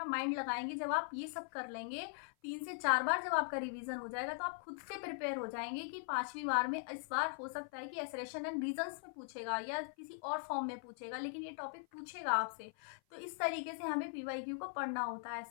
माइंड लगाएँगे। जब आप ये सब कर लेंगे, 3 से 4 बार जब आपका रिवीजन हो जाएगा, तो आप खुद से प्रिपेयर हो जाएँगे कि 5वीं बार में इस बार हो सकता है कि असर्शन एंड रीज़न्स में पूछेगा या किसी और फॉर्म में पूछेगा, लेकिन ये टॉपिक पूछेगा आपसे। तो इस तरीके से हमें पीवाईक्यू को पढ़ना होता है।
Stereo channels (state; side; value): silent; right; 51 dB below the other